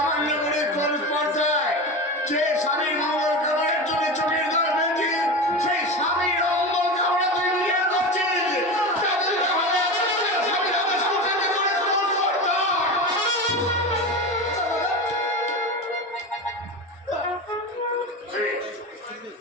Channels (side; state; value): both; normal; correlation 0.24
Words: করে কোন স্পর্ধায় যে স্বামীর মঙ্গল কামনার জন্য চোখের জল ফেলছে সেই স্বামীর অমঙ্গল কামনা তুই নিজের করছিস। তাদের হবে স্বামীর আদেশ করতে করে কোন স্পর্ধা।